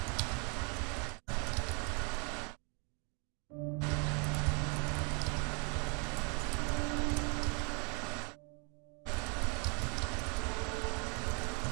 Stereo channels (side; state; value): left; quieter; 34.9 dB